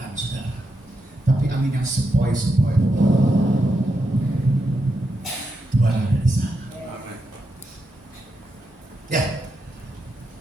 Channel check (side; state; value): left; late; 1.4 ms